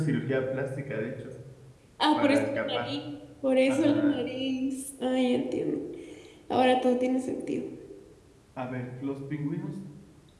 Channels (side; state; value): both; identical; correlation 1.00